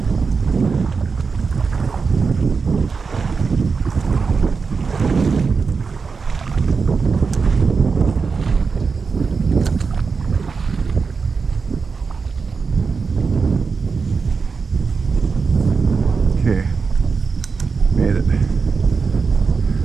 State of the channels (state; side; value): quieter; left; 5.0 dB